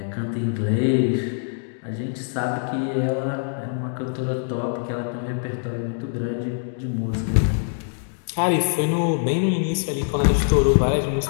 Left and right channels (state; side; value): silent; right; digital silence